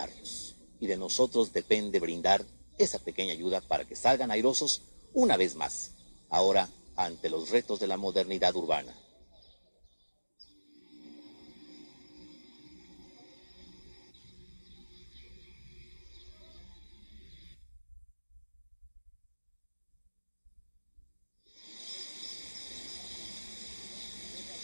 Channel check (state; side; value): inverted; both; correlation -1.00